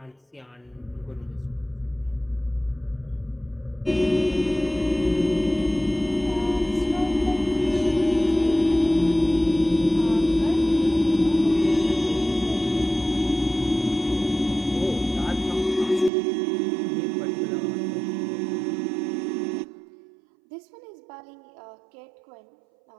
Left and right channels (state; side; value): drops out; left; at 16.1 s